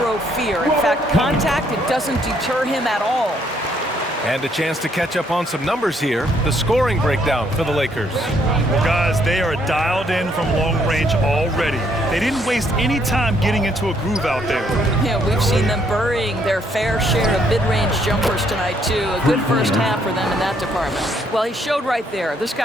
fear. In fact, contact, it doesn't deter him at all. And a chance to catch up on some numbers here. The scoring breakdown for the Lakers. Well, guys, they are dialed in from long range already. They didn't waste any time getting into a groove out there. Yeah, we've seen them burying their fair share of mid-range jumpers tonight, too. A good first half for them in that department. Well, he showed right there. This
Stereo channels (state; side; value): normal; both; correlation 0.69